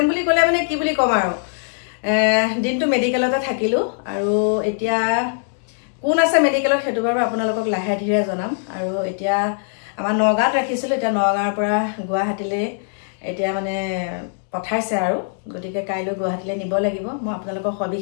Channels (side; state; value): right; silent; digital silence